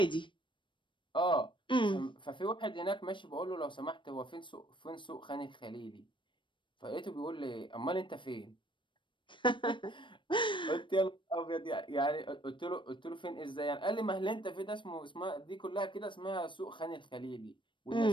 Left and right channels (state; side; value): late; right; 0.24 ms